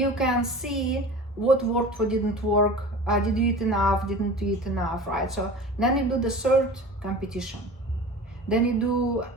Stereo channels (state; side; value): normal; both; correlation 0.37